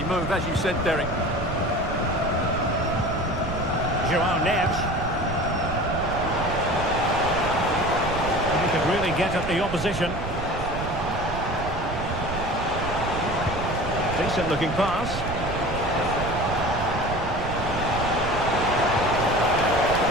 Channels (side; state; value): right; noise; rumble, 7 dB below the sound